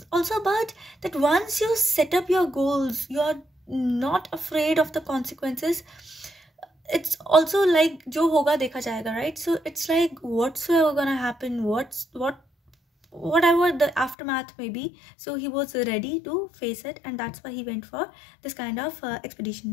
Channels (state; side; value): drops out; right; at 14.2 s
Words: also about that once you set up your goals, you are not afraid of the consequences. It's also like jo hoga dekha jayega, right? So it's like whatsoever gonna happen, whatever the aftermath may be, so he was ready to face it, and that's why he went for this kind of